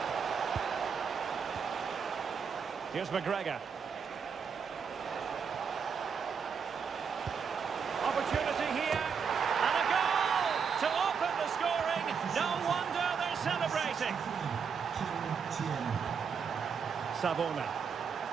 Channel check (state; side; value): quieter; left; 6.4 dB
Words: Here's McGregor. Opportunity here. And a goal to open the scoring. No wonder they're celebrating. Savona.